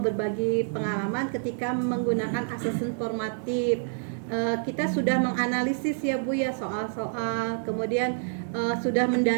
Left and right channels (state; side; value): silent; left; 60 dB below the other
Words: pengalaman ketika menggunakan asesmen formatif. Kita sudah menganalisis ya Bu ya soal-soal, kemudian sudah